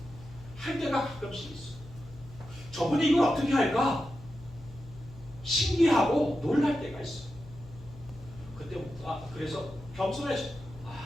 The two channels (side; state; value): left; noise; hum, 18 dB below the sound